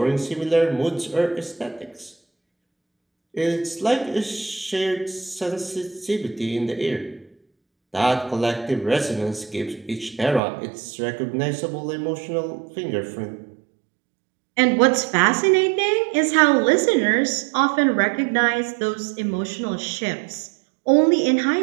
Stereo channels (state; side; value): drops out; left; at 10.4 s